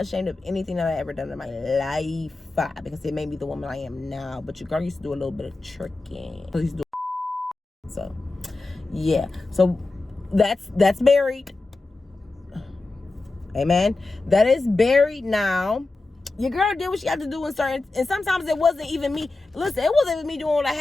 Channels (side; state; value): right; quieter; 3.3 dB